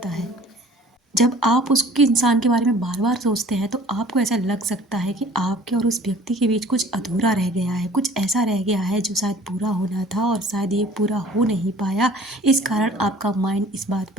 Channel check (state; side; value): normal; both; correlation 0.49